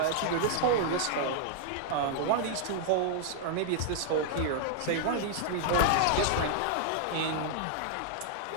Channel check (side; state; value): both; different; correlation -0.01